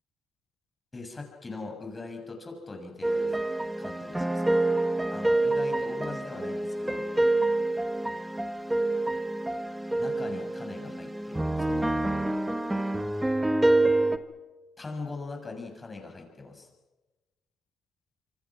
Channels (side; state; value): both; normal; correlation 0.98